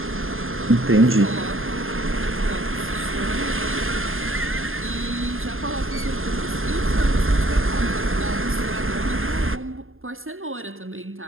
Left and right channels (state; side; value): late; left; 0.60 ms